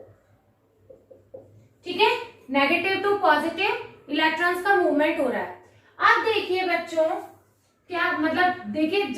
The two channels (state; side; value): identical; both; correlation 1.00